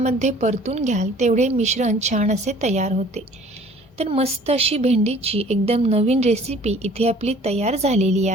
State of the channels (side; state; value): both; normal; correlation 0.52